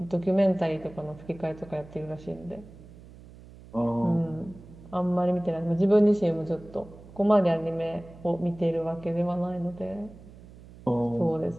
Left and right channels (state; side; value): noise; right; hum, 19 dB below the sound